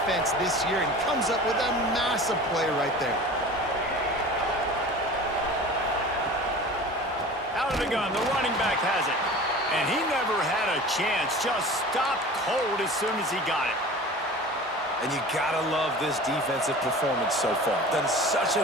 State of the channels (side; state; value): both; normal; correlation 0.38